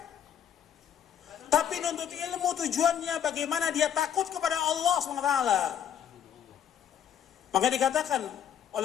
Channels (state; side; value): quieter; right; 9.3 dB